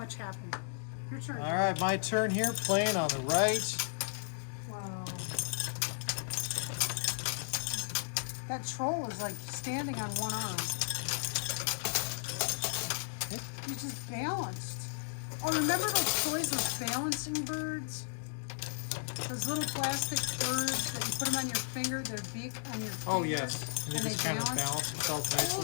happened. Your turn. All right, my turn here, playing on the right. Wow. That troll is like standing on one arm. He's just balanced. Oh, remember those toys, those balancing birds? Those little plastic birds that you put them on your finger, their beak on your finger. Oh, yes. And they And just they kind of balance. balance themselves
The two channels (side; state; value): right; silent; digital silence